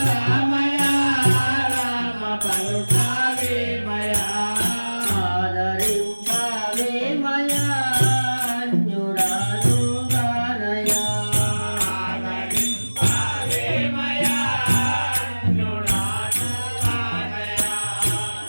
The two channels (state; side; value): inverted; both; correlation -1.00